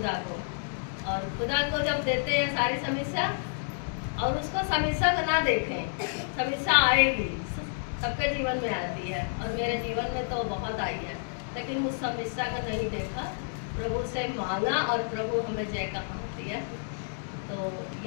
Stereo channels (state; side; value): silent; right; digital silence